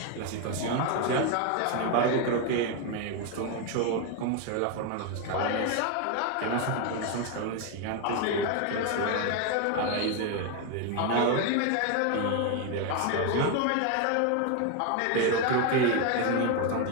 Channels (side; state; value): both; different; correlation 0.01